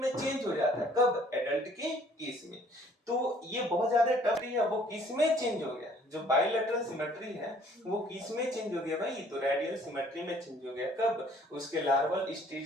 चेंज हो जाता है। कब, एडल्ट के केस में। तो ये बहुत ज्यादा टफ है, वो किस में चेंज हो गया, जो बाइलेटरल सिमेट्री है वो किस में चेंज हो गया भाई, तो रेडियल सिमेट्री में चेंज हो गया। कब, उसके लार्वल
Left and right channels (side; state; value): both; normal; correlation 0.58